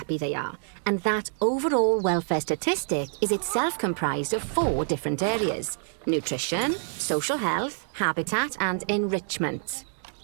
they are. And that overall welfare statistic is itself comprised of 4 different areas: nutrition, social health, habitat, and enrichment.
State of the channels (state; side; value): silent; left; digital silence